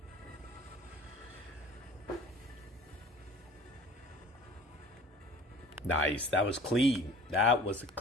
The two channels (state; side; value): normal; both; correlation 0.45